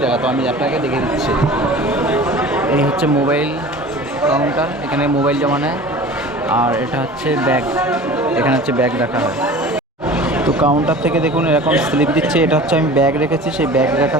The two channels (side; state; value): both; normal; correlation 0.40